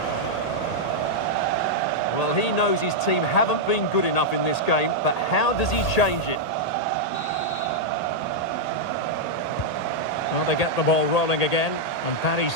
He knows his team haven't been good enough in this game, but how does he change it? Well, they get the ball rolling again, and Paris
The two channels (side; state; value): right; late; 1.8 ms